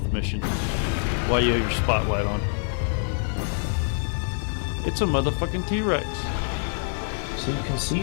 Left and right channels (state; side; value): silent; right; 57 dB below the other